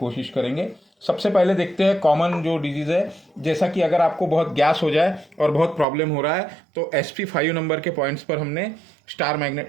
करेंगे। सबसे पहले देखते हैं कॉमन जो डिजीज़ है, जैसा कि अगर आपको बहुत गैस हो जाए और बहुत प्रॉब्लम हो रहा है तो SP5 नंबर के पॉइंट्स पर हमने स्टार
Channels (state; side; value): drops out; left; at 5.9 s